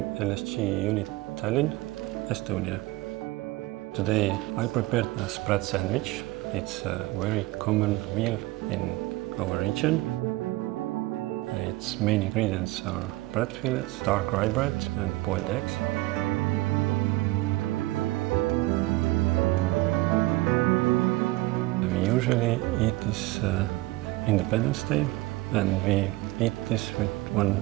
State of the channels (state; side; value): quieter; left; 19.8 dB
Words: LSG unit Tallinn, Estonia. Today I prepared a Sprat sandwich. It's a very common meal in our region. Its main ingredients are bread fillets, dark rye bread and boiled eggs. We usually eat this Independence Day, and we eat this with